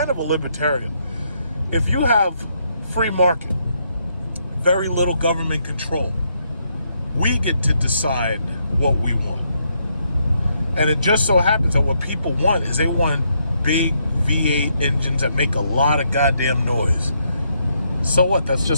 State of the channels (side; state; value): both; inverted; correlation -0.76